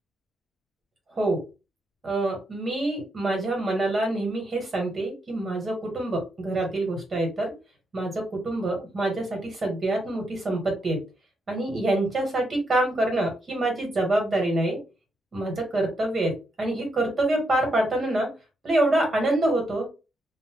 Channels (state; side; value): normal; both; correlation 0.80